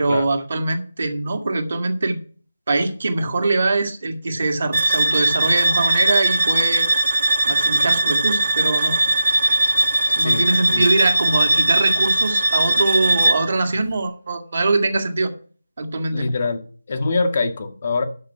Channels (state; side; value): inverted; both; correlation -0.91